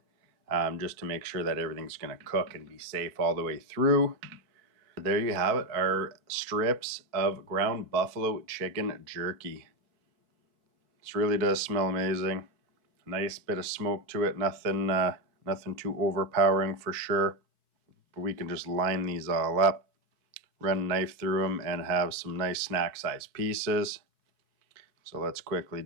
Just to make sure that everything's going to cook and be safe all the way through. There you have it, our strips of ground buffalo chicken jerky. This really does smell amazing. Nice bit of smoke to it, nothing too overpowering for sure. But we can just line these all up, run a knife through them, and have some nice snack size pieces. So let's quickly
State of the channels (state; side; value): late; left; 4.5 ms